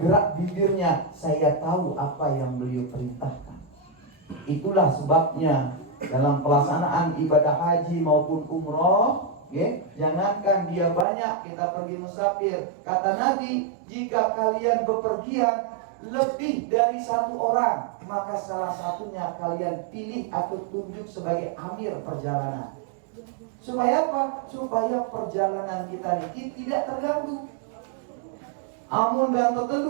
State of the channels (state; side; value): drops out; left; at 11.1 s